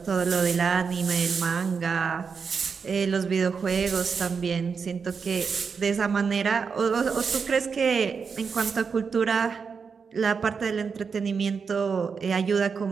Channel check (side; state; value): left; quieter; 5.7 dB